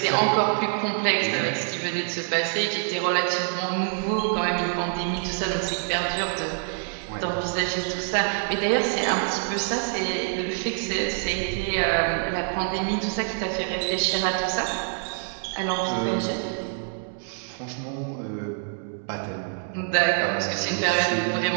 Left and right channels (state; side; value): silent; left; 61 dB below the other